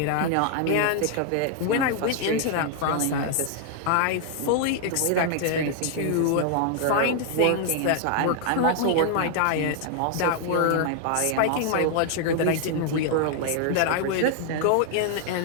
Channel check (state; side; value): different; both; correlation 0.00